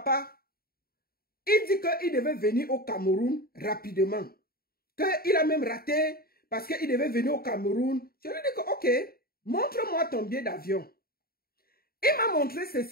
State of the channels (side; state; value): right; late; 0.44 ms